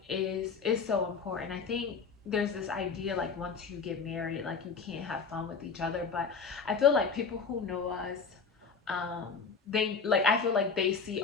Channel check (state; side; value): quieter; right; 5.3 dB